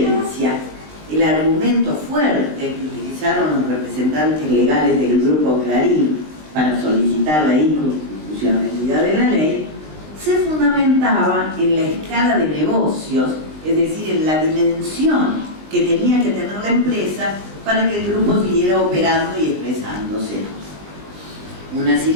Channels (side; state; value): left; late; 20 ms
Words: el argumento fuerte que utilizaron los representantes legales del Grupo Clarín para solicitar la inconstitucionalidad de la ley se fundamentaba en la escala de negocios, es decir, en la dimensión que tenía que tener la empresa para que el grupo siguiera operando y expresándose. Una